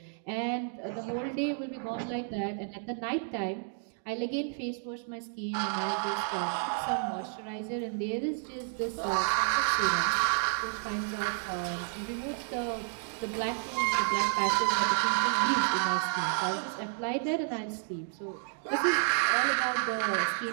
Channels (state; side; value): silent; left; 57 dB below the other